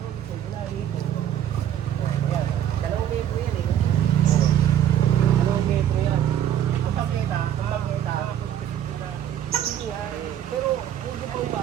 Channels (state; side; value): quieter; left; 10.6 dB